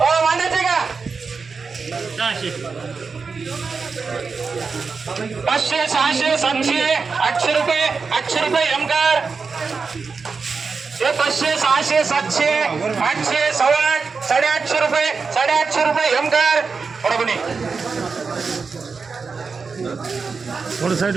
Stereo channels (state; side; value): quieter; left; 4.9 dB